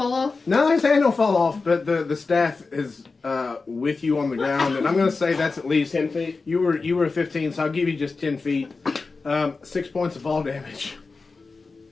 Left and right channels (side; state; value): right; quieter; 4.1 dB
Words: off? No, his hand don't fall off, but the staff is with you on the ground, and I'm gonna say that's at least 10 feet. You were 15, so I'll give you just 10 feet. 6 points of fall damage